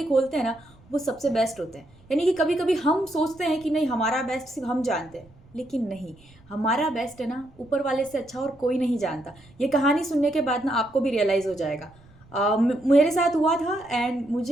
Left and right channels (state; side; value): noise; right; rumble, 26 dB below the sound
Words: खोलते हैं ना वो सबसे बेस्ट होते हैं। यानी कि कभी कभी हम सोचते हैं कि नहीं, हमारा बेस्ट सिर्फ हम जानते हैं, लेकिन नहीं, हमारा बेस्ट है ना ऊपर वाले से अच्छा और कोई नहीं जानता। ये कहानी सुनने के बाद ना आपको भी रियलाइज़ हो जाएगा। मेरे साथ हुआ था एंड